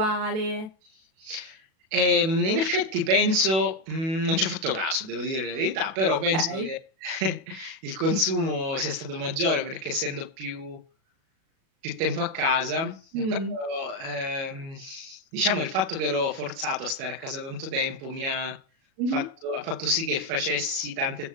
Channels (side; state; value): left; late; 37 ms